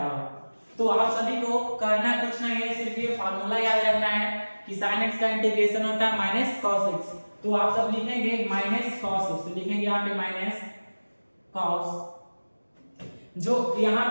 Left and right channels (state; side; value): inverted; both; correlation -1.00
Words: तो आप सभी को करना कुछ नहीं है, सिर्फ ये फार्मूला याद रखना है कि sin x का इंटीग्रेशन होता है माइनस cos x। तो आप सब लिखेंगे माइनस cos x, तो लिखेंगे यहाँ पे माइनस cos, जो यहाँ